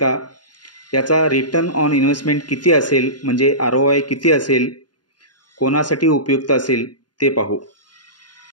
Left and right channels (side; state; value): right; late; 0.70 ms